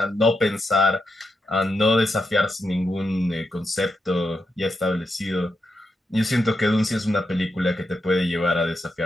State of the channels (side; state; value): both; normal; correlation 0.85